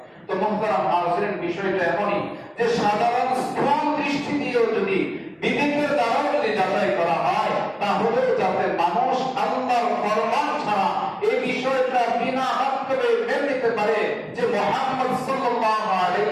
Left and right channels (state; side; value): identical; both; correlation 1.00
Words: তো মুহতারাম হাজিরিন, বিষয়টা এমনই যে সাধারণ স্থূল দৃষ্টি দিয়েও যদি বিবেকের দ্বারা যদি যাচাই করা হয় তাহলে যাতে মানুষ আল্লাহর ফরমান ছাড়া এই বিষয়টা বিনা মাধ্যমে মেনে নিতে পারে যে মুহাম্মদ সাল্লাল্লাহু